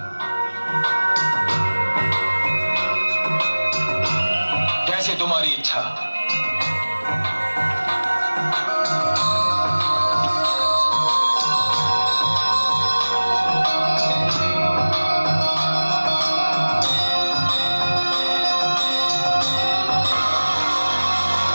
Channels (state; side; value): inverted; both; correlation -1.00